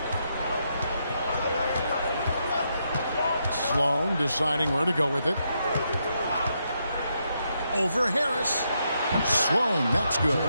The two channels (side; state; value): both; inverted; correlation -0.80